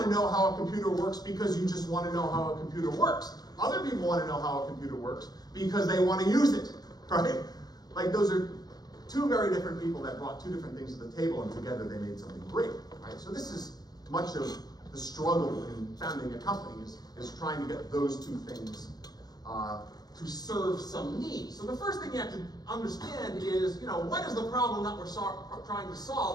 to know how a computer works because you just want to know how a computer works. Other people want to know how a computer works because they want to use it, right? Like, those are two very different people that brought two different things to the table, and together they made something great, right? So this is much of the struggle in founding a company is trying to get those two things to serve some need. So the first thing you have to understand is, you know, what is the problem that we're trying to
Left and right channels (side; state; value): right; late; 0.19 ms